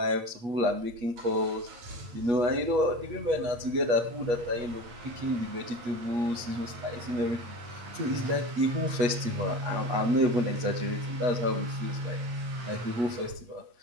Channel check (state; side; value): late; left; 8.3 ms